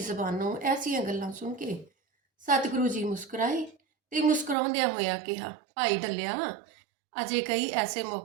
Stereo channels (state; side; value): drops out; left; at 4.5 s